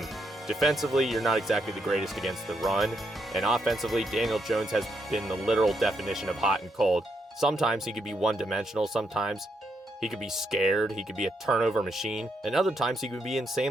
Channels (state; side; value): normal; both; correlation 0.78